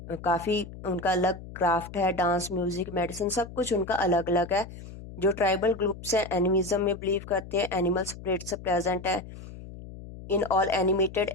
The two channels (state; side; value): noise; left; hum, 14 dB below the sound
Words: काफ़ी उनका अलग क्राफ्ट है. डांस, म्यूजिक, मेडिसिन, सब कुछ उनका अलग अलग है. जो ट्राइबल ग्रुप्स हैं एनिमिज्म में बिलीव करते हैं. एनिमल स्पिरिट्स प्रेजेंट है in all animated